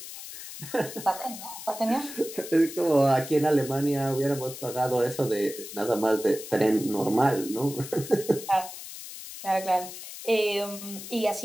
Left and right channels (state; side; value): noise; left; hiss, 11 dB below the sound